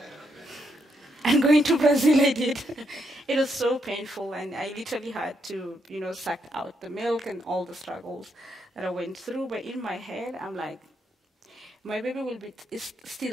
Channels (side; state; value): both; normal; correlation 0.78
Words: And going to Brazil, I did. It was so painful, and I literally had to, you know, suck out the milk and all the struggles that I went through. But in my head, I'm like, my baby is